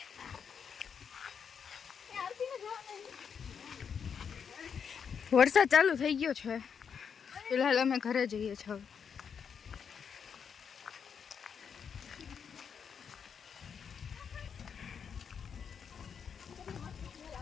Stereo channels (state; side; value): quieter; right; 6.9 dB